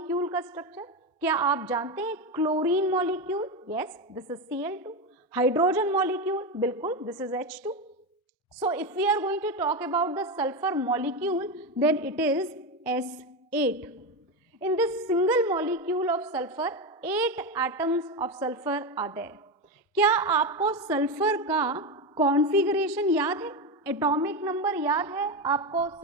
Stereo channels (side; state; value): both; normal; correlation 0.15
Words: का स्ट्रक्चर? क्या आप जानते हैं chlorine molecule? Yes, this is Cl2। Hydrogen molecule? बिल्कुल, this is H2। So if we are going to talk about the sulfur molecule, then it is S8. In this single molecule of sulfur, 8 atoms of sulfur are there. क्या आपको सल्फर का कॉन्फ़िगरेशन याद है? एटॉमिक नंबर याद है आपको